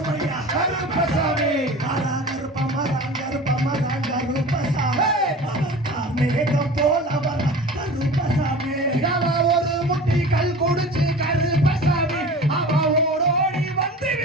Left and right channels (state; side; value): normal; both; correlation 0.37